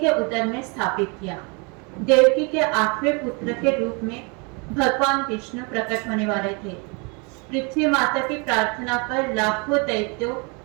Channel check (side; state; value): left; quieter; 31.9 dB